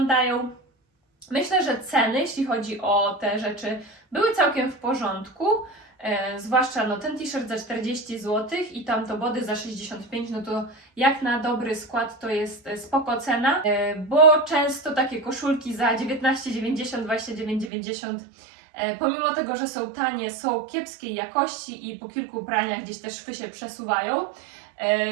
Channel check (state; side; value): drops out; left; at 17.7 s